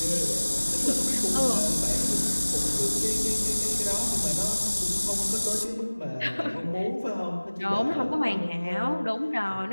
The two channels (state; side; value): inverted; both; correlation -1.00